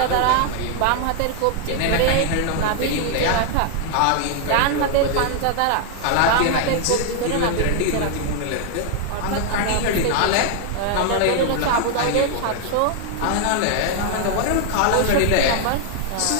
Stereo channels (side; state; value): both; different; correlation 0.00